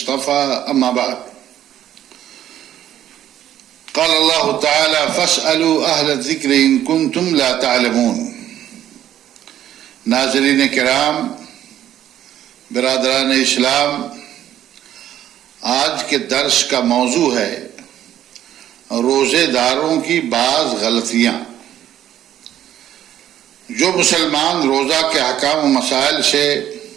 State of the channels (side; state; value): left; quieter; 11.6 dB